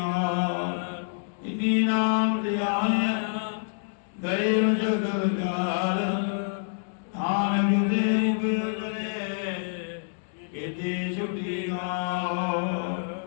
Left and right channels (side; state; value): right; silent; digital silence